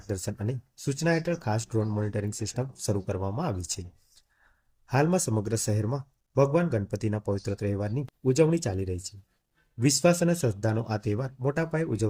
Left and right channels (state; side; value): identical; both; correlation 1.00